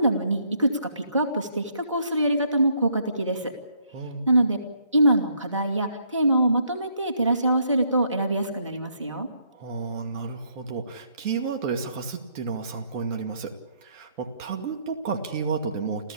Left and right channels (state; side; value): inverted; both; correlation -0.70